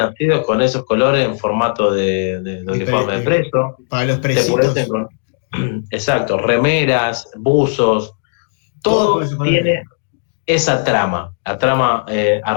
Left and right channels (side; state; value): right; silent; digital silence